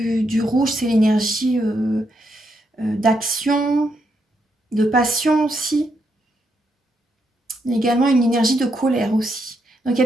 du rouge, c'est l'énergie d'action, de passion aussi. Il y a également une énergie de colère aussi. Donc il y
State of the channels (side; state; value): both; normal; correlation 0.79